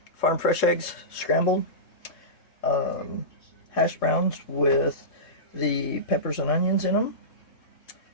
Farm fresh eggs, scrambled. Hash browns with the peppers and onions in them.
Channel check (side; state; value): right; late; 3.2 ms